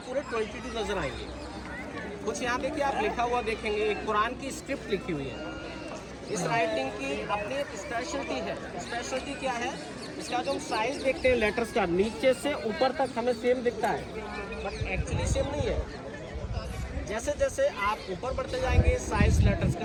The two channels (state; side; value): identical; both; correlation 1.00